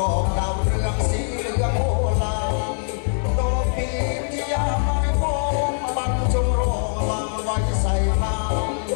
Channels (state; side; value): silent; right; 64 dB below the other